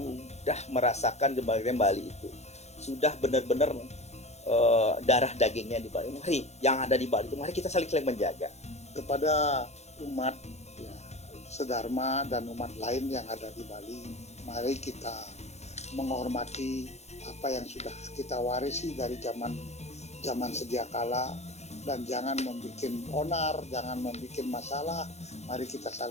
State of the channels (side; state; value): right; late; 0.32 ms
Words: merasakan kebahagiaan Bali itu. Sudah benar-benar darah dagingnya di Bali. Mari yang ada di Bali itu, mari kita saling menjaga. Kepada umat ya, sedharma dan umat lain yang ada di Bali, mari kita menghormati apa yang sudah kita warisi dari zaman sedia kala, dan jangan membuat onar, jangan membuat masalah. Mari kita